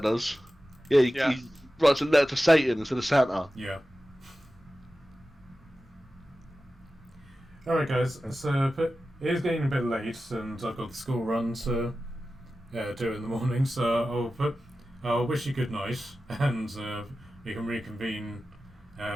does. Yeah, he writes a letter to Satan instead of Santa. Yeah. Alright, guys. So it is getting a bit late, and I've got the school run to do in the morning. So I'll wish you good night, and we can reconvene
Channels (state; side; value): normal; both; correlation 0.94